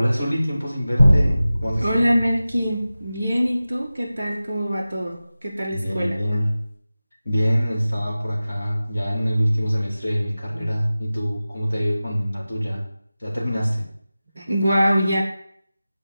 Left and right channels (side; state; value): both; inverted; correlation -0.96